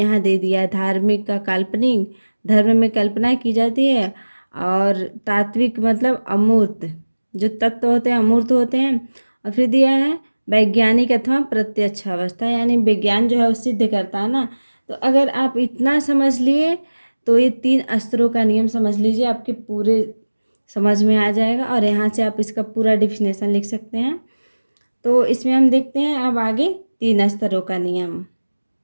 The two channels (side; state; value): both; inverted; correlation -1.00